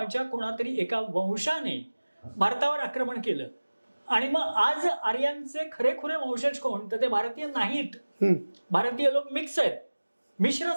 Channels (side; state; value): both; inverted; correlation -1.00